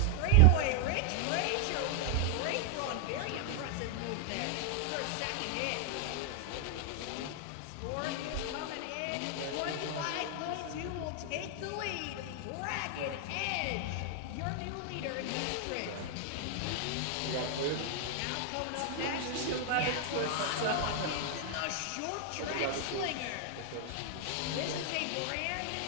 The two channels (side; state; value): both; different; correlation 0.00